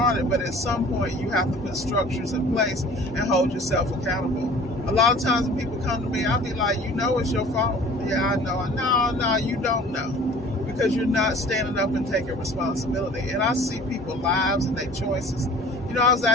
but at some point you have to put structures in place and hold yourself accountable. A lot of times when people come to me, I'll be like, you know it's your fault. Yeah, I know. No, you don't know. Because you're not standing up and taking responsibility. And I see people's lives and their choices. You know, I was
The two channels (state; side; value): normal; both; correlation 0.47